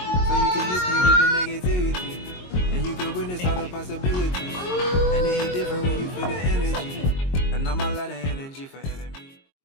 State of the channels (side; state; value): right; late; 22 ms